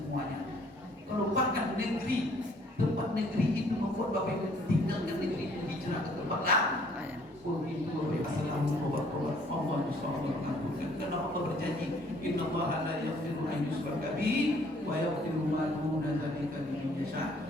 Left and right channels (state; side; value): normal; both; correlation 0.60